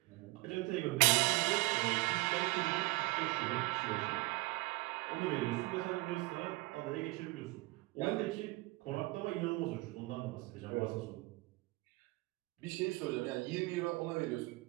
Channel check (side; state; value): left; quieter; 22.4 dB